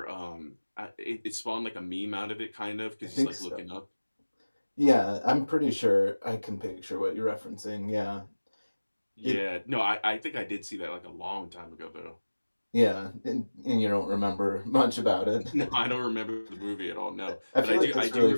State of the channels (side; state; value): both; inverted; correlation -1.00